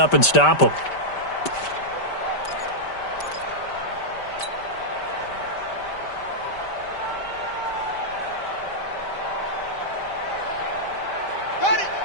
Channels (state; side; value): late; right; 5.1 ms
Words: and stop them. Got it.